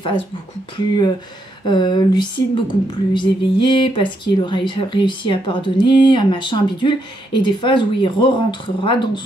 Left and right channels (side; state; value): both; normal; correlation 0.78